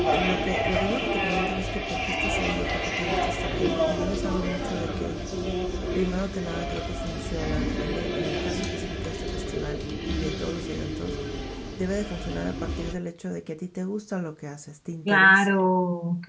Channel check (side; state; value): both; identical; correlation 1.00